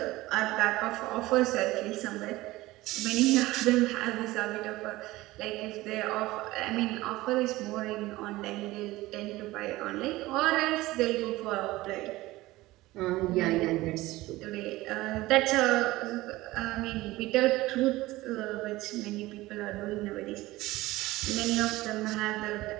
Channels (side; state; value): left; quieter; 18.5 dB